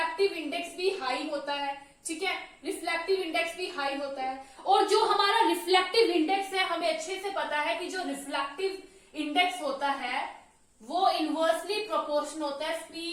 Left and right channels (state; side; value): identical; both; correlation 1.00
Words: इंडेक्स भी हाई होता है। ठीक है, रिफ्लेक्टिव इंडेक्स भी हाई होता है। और जो हमारा रिफ्लेक्टिव इंडेक्स है, हमें अच्छे से पता है कि जो रिफ्लेक्टिव इंडेक्स होता है वो इनवर्सली प्रोपोर्शनल होता है